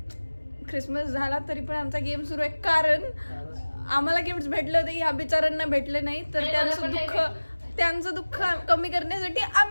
Christmas झाला तरी पण आमचा गेम सुरू आहे कारण आम्हाला गिफ्ट भेटले होते ह्या बिचारांना भेटले नाही तर त्यांचं दुःख कमी करण्यासाठी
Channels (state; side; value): inverted; both; correlation -1.00